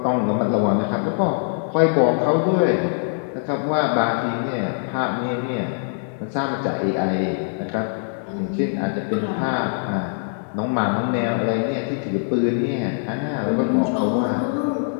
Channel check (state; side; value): silent; right; 64 dB below the other